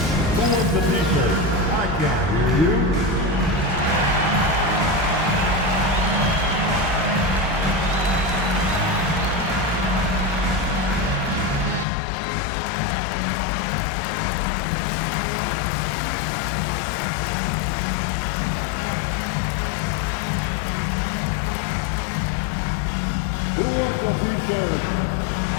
Who wants the t-shirt? I can't hear you.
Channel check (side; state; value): right; drops out; at 11.9 s